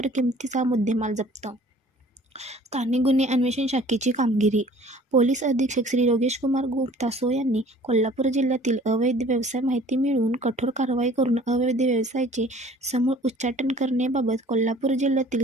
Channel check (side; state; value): both; normal; correlation 0.51